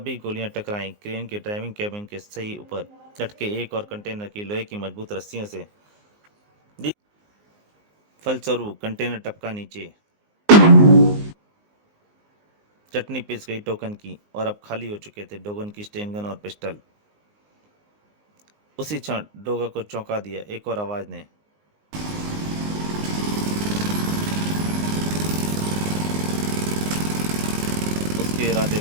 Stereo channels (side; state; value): left; late; 19 ms